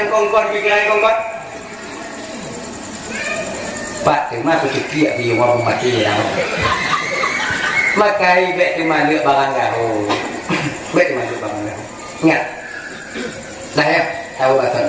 kongkon pikiran kongkon Pak terima kecil di orang mati dah. Maka ibet terima lihat barang gaul. Bet terima lihat barang gaul. Ingat. Dah ya, tahu bahasa.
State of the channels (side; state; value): left; noise; rumble, 30 dB below the sound